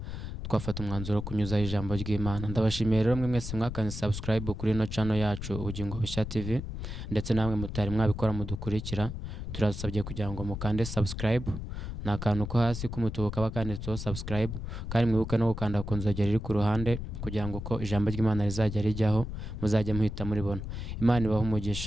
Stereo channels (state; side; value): noise; left; rumble, 7 dB below the sound